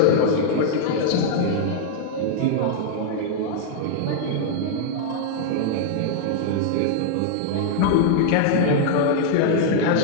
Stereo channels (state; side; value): different; both; correlation -0.01